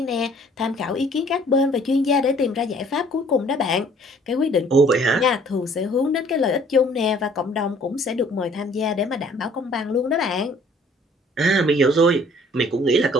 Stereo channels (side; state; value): both; normal; correlation 0.57